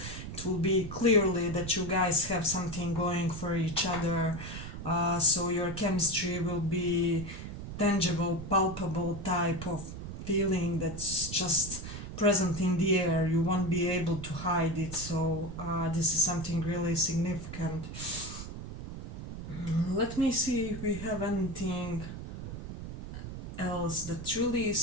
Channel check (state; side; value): noise; right; rumble, 9 dB below the sound